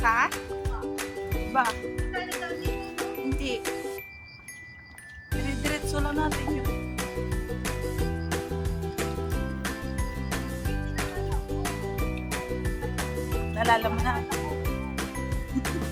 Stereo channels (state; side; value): identical; both; correlation 1.00